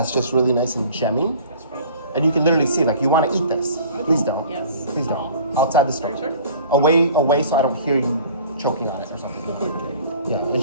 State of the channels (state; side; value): inverted; both; correlation -0.47